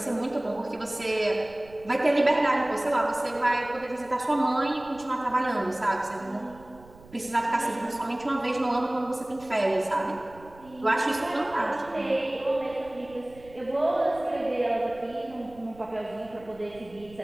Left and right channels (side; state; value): right; noise; rumble, 22 dB below the sound